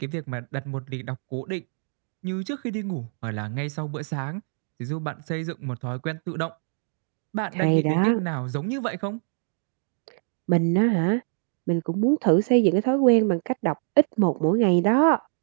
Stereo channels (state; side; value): silent; left; 61 dB below the other